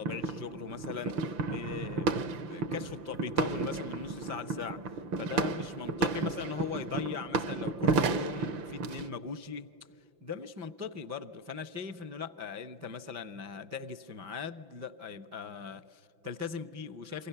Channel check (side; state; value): left; late; 5.9 ms